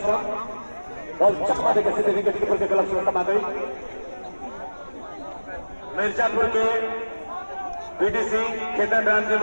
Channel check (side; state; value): both; inverted; correlation -1.00